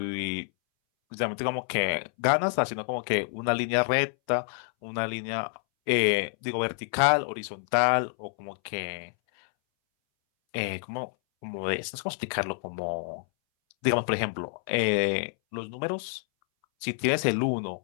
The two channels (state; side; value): silent; right; 59 dB below the other